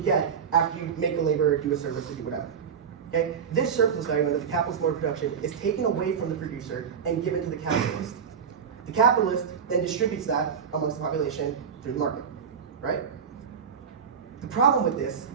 get after you make a labor, do a service, or do whatever. Okay? This surplus value under the capitalist mode of production is taken away from the producer and given to the capitalist. The capitalist then distributes that amongst the population through the market, right? The problem with this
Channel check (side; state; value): left; quieter; 6.9 dB